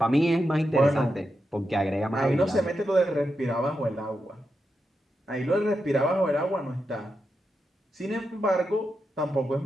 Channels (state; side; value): normal; both; correlation 0.87